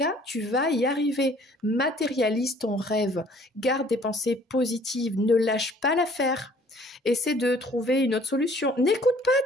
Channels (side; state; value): both; normal; correlation 0.56